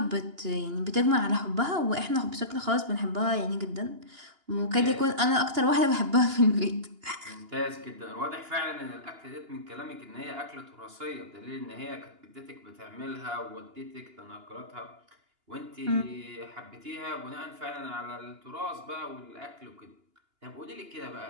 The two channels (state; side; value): late; left; 2.9 ms